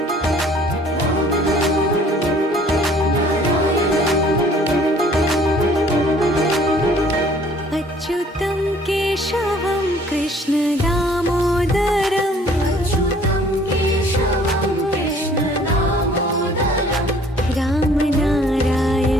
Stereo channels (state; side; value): normal; both; correlation 0.56